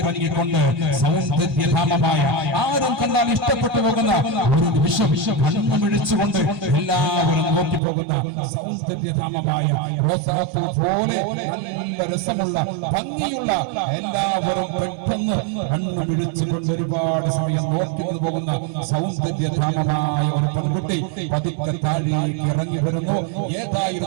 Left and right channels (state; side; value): drops out; left; at 7.8 s